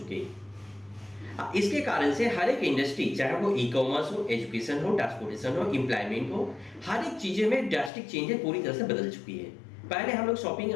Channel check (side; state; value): right; drops out; at 7.9 s